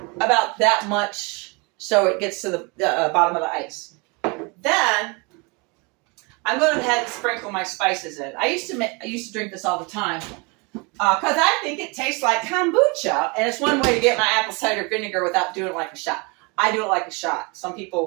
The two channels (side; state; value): left; quieter; 29.5 dB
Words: about that much so it gets to the bottom of the ice. Then I'm going to go ahead and sprinkle my spices in. I used to drink this all the time because I think it tastes like kombucha, and it's one way to get my apple cider vinegar without doing it like a shot. I do it like a shot. Some